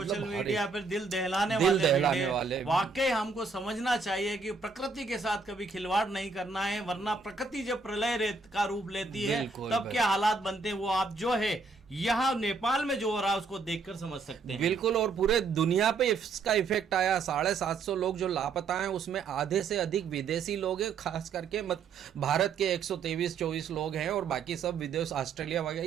मीडिया पर, दिल दहलाने वाले वाकई हमको समझना चाहिए कि प्रकृति के साथ कभी खिलवाड़ नहीं करना है, वरना प्रकृति जब प्रलय का रूप लेती है तब क्या हालात बनते हैं वो आप जो है यहाँ नेपाल में जो हो रहा है उसको देखकर समझ सकते हैं। बिल्कुल, और पूरे दुनिया पे इसका इफेक्ट आया। 750 लोग जो लापता हैं उसमें आधे से अधिक विदेशी लोग हैं, खास करके भारत के 123-24 लोग हैं, और बाकी सब विदेश, ऑस्ट्रेलिया वगैरह,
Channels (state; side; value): quieter; left; 4.6 dB